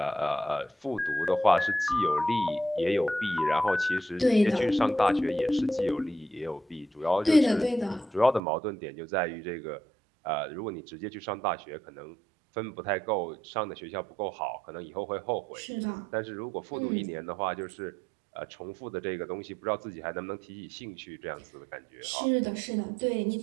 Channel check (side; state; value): left; drops out; at 8.4 s